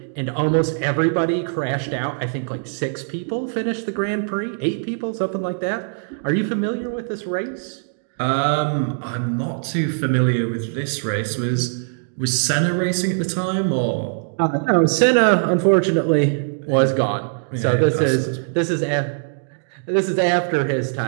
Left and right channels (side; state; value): left; silent; digital silence